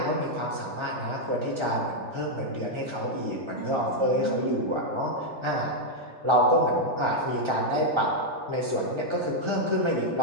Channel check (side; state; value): left; late; 3.4 ms